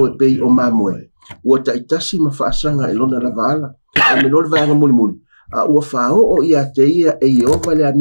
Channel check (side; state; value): both; inverted; correlation -1.00